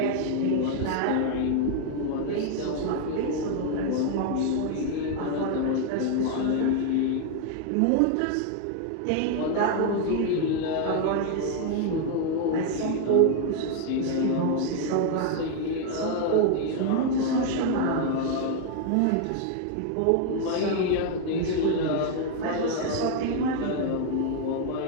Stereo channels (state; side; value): different; both; correlation 0.00